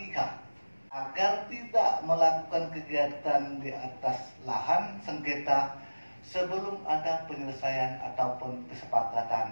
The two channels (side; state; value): both; inverted; correlation -1.00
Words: agar tidak melakukan kegiatan di atas lahan sengketa sebelum ada penyelesaian ataupun